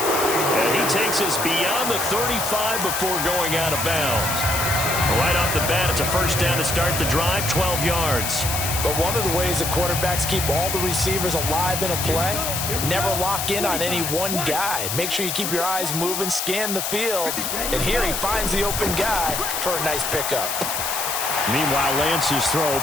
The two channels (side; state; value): left; noise; hiss, 2 dB below the sound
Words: And he takes us beyond the 35 before going out of bounds. Right off the bat, it's a first down to start the drive, 12 yards. But one of the ways that quarterbacks keep all the receivers alive in a play, never lock in on any one guy. Make sure you keep your eyes moving, scan the field. And here he finds the open guy for a nice pickup. Meanwhile, Lance's throw